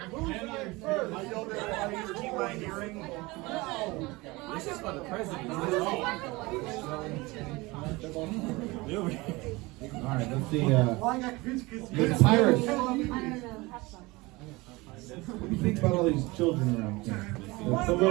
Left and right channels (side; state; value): left; quieter; 22.7 dB